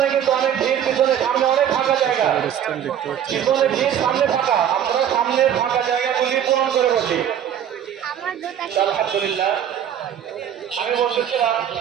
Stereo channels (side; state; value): left; quieter; 9.7 dB